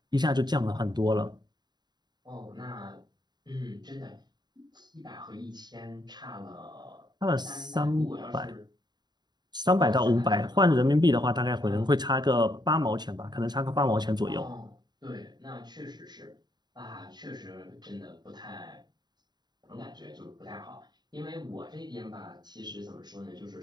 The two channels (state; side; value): late; left; 0.20 ms